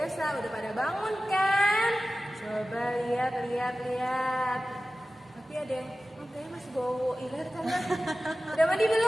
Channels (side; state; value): both; normal; correlation 0.95